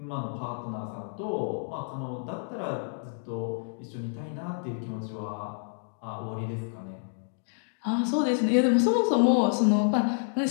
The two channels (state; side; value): silent; right; digital silence